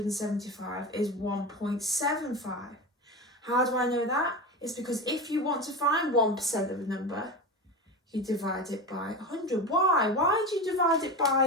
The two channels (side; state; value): both; normal; correlation 0.23